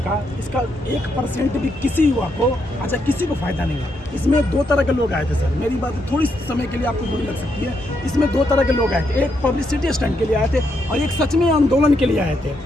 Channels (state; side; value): normal; both; correlation 0.79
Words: इसका 1% भी किसी युवा को, अच्छा किसी को फायदा नहीं है। इसमें 2 तरह के लोग आए थे सर, मेरी बात थोड़ी समय के लिए आपको बुरी लग सकती है, इसमें 2 तरह के लोग आए थे। एक पब्लिसिटी स्टंट के लिए आए थे और एक सच में आंदोलन के लिए आए